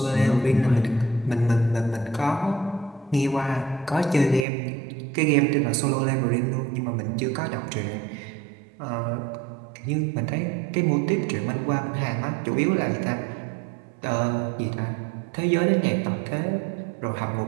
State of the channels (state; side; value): drops out; left; at 4.5 s